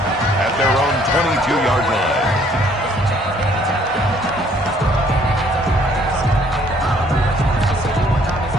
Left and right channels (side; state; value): both; normal; correlation 0.62